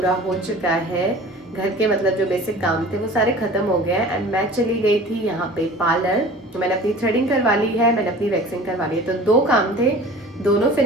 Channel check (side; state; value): both; normal; correlation 0.42